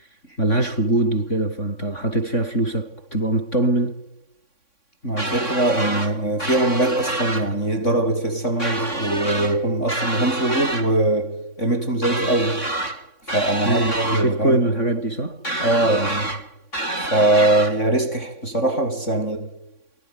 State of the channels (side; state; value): right; late; 3.6 ms